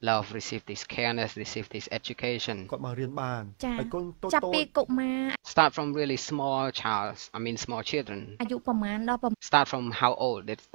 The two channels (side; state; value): left; silent; digital silence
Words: love, receive this careness, receive this education. គាត់មករៀនបាន ចា ហើយកូនតូច ចាប់ តូ ពី ច កុមារ Start from really small small children. អាយុប្រមាណដល់ប្រ Start from how old?